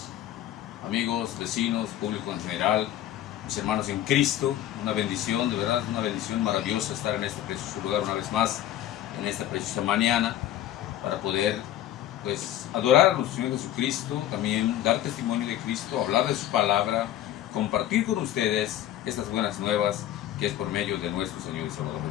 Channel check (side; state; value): right; quieter; 12.4 dB